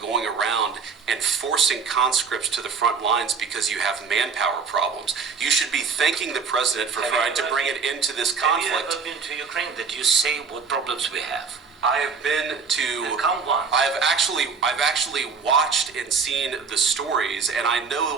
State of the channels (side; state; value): left; quieter; 5.4 dB